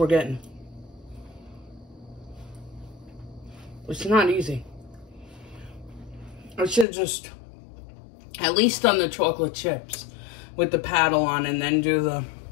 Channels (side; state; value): right; drops out; at 6.9 s